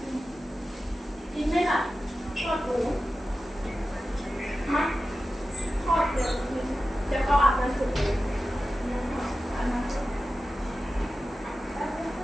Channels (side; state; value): both; normal; correlation 0.93